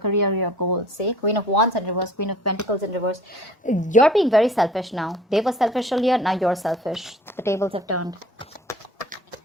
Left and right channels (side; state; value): both; normal; correlation 0.49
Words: your goals. See, Queen of Wands in reverse, Queen of Pentacles in reverse. You're being very selfish now. They were selfish earlier, now you're selfish. The tables have turned.